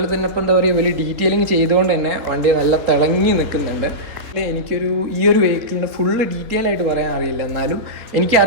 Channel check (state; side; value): late; left; 3.8 ms